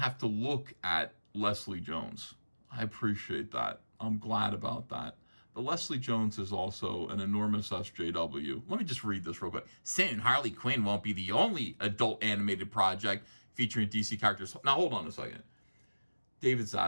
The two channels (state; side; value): inverted; both; correlation -1.00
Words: to look at Leslie Jones." I appreciate that. I'm glad about that. But Leslie Jones is also an enormous SJW. Let me just read this real quick. "Soon, Harley Quinn won't be the only adult animated project featuring DC characters." Now, hold on a second. David